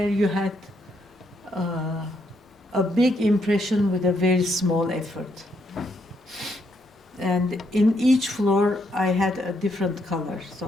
you had a big impression with a very small effort. And in each floor, I had a different color. So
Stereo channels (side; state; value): both; normal; correlation 0.76